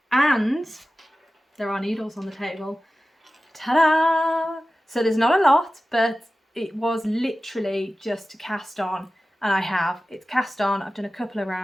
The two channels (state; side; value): normal; both; correlation 0.95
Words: And there are needles on the table. Ta-da! So there's not a lot, but it was literally just to cast on, and it's cast on. I've done a couple of